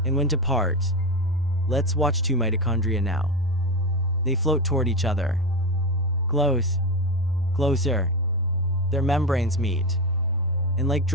and when to part. Let's watch two mitochondria now. They float toward each other. Close, closer. Their membranes meet, and like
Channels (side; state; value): both; normal; correlation 0.17